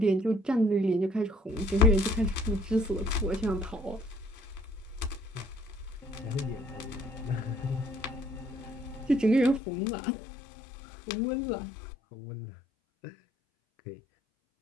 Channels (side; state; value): right; drops out; at 9.6 s